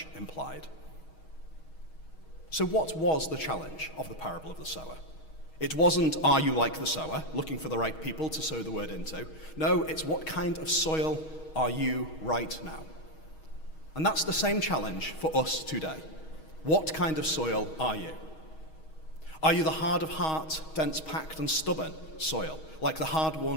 implied. So what was the challenge of the parable of the sower? It wasn't, are you like the sower, looking for the right people to sow the word into. No, it's what kind of soil are you right now? And that's the same challenge for us today. What kind of soil are you? Are you the hard of heart, dense packed and stubborn soil, like the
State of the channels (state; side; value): late; right; 6.3 ms